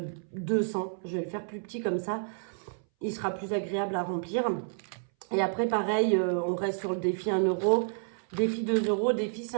200. Je vais le faire plus petit comme ça. Il sera plus agréable à remplir. Et après, pareil, on reste sur le défi 1 euro, défi 2 euros, défi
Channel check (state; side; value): silent; left; 58 dB below the other